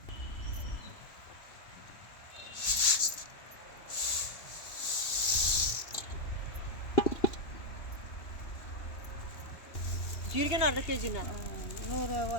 ಜೀರಿಗೆನೂ ಅರ್ಧ ಕೆ ಜಿನ,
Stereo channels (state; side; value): late; right; 2.8 ms